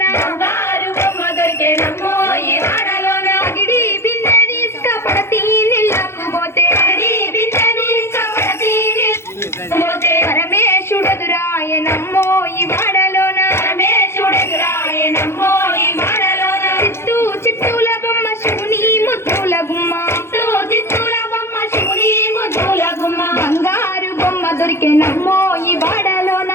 బంగారు బొమ్మ దొరికెనమ్మో ఈ వాడలోన అగిడి బిందె తీసుకుపడతి నీళ్ళకు పోతే బిందె తీసుకుపడతి పోతే పరమేశుడెదురాయనమ్మో ఈ వాడలోన పరమేశుడెదురాయనమ్మో ఈ వాడలోన చిత్తుల బొమ్మ శివుని ముద్దుల గుమ్మ చిత్తుల బొమ్మ శివుని ముద్దుల గుమ్మ బంగారు బొమ్మ దొరికెనమ్మో ఈ వాడలోన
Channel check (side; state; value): right; late; 0.12 ms